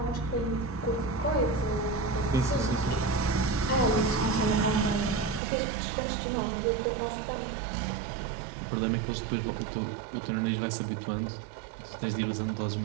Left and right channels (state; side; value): drops out; left; at 5.4 s